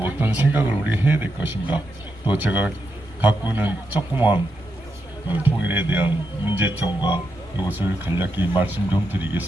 어떤 생각을 우리 해야 될 것인가, 또 제가 갖고 있는 조그만 통일에 대한 문제점과 이것을 간략히 말씀 좀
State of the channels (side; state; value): both; normal; correlation 0.84